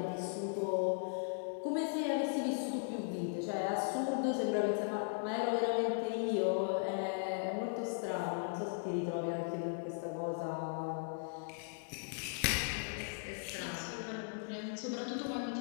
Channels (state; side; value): silent; right; 53 dB below the other